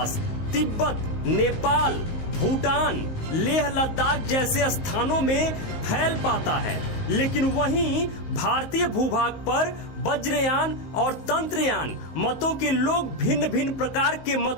तिब्बत, नेपाल, भूटान, लेह लद्दाख जैसे स्थानों में फैल पाता है। लेकिन वहीं भारतीय भूभाग पर वज्रयान और तंत्रयान मतों के लोग भिन्न भिन्न प्रकार के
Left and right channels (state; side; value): late; right; 19 ms